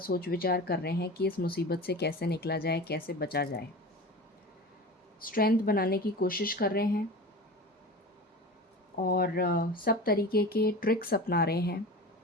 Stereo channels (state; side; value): normal; both; correlation 0.33